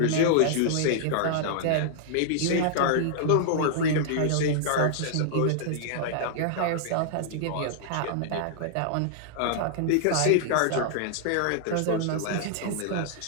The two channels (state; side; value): different; both; correlation -0.01